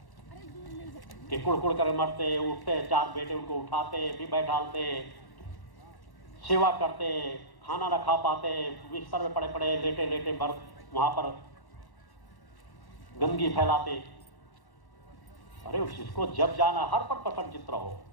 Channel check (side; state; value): right; late; 1.1 ms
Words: कि कुड़ कर मरते, उठते, चार बेटे उनको उठाते, भी बैठालते, सेवा करते, खाना न खा पाते, बिस्तर में पड़े पड़े लेटे लेटे वहां पर गंदगी फैलाते। अरे उसको जब जाना हर पर प्रसन्नचित्त रहो।